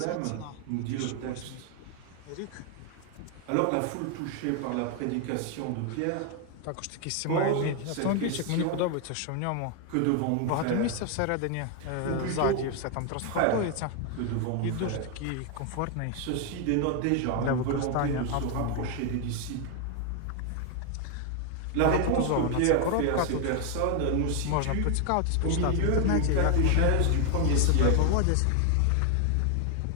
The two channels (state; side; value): different; both; correlation 0.01